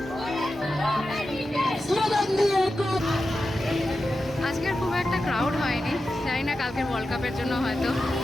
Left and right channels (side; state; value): both; normal; correlation 0.91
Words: আজকের খুব একটা ক্রাউড হয়নি, জানি না কালকের ওয়ার্ল্ড কাপের জন্য হয়তো,